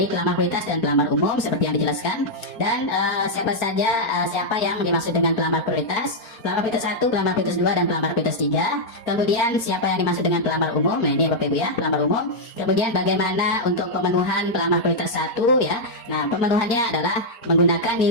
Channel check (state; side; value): late; right; 4.4 ms